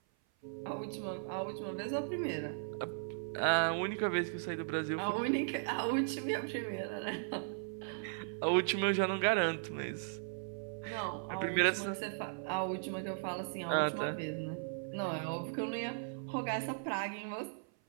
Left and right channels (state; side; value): silent; left; 53 dB below the other